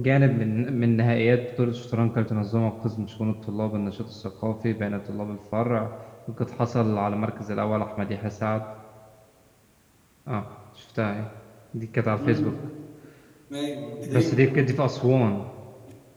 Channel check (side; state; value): both; identical; correlation 1.00